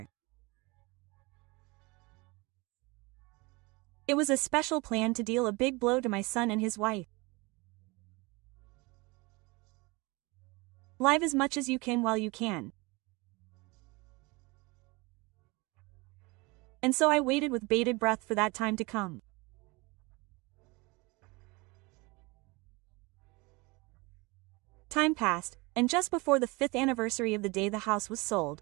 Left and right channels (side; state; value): left; quieter; 25.3 dB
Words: It was a special plan to deal a big blow to my son and his wife. Live as much as you can while you can. And so I waited with bated breath for that time to come. Time passed, and just before the 5th anniversary of the day the house was sold,